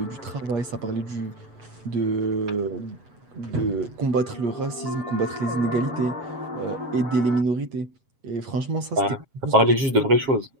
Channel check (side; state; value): left; late; 7.4 ms